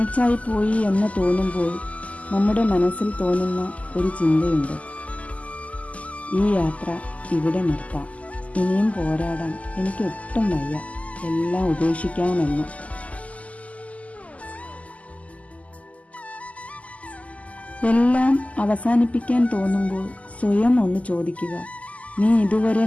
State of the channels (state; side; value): late; right; 0.070 ms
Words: പോയി എന്ന് തോന്നുമ്പോൾ നമ്മുടെ മനസ്സിൽ തോന്നുന്ന ഒരു ചിന്തയുണ്ട്: ഈ യാത്ര ഇവിടെ നിർത്താം, ഇനിയും പോരാടാൻ എനിക്കൊട്ടും വയ്യ, എല്ലാം ഉപേക്ഷിക്കാമെന്ന്. എല്ലാം അവസാനിപ്പിക്കാൻ തോന്നുമ്പോൾ സ്വയം ഒന്ന് ചോദിക്കുക: നീ ഇതുവരെ